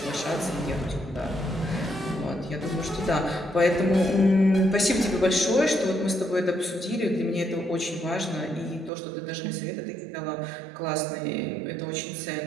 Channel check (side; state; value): left; drops out; at 8.9 s